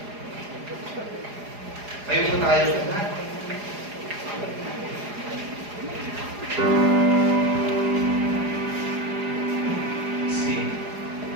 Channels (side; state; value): left; late; 4.9 ms